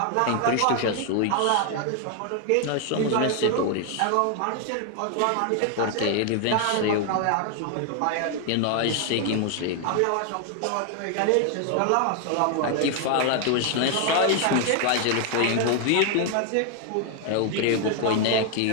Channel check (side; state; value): both; different; correlation 0.00